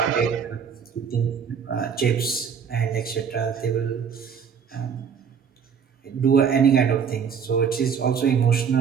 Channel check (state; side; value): quieter; left; 7.0 dB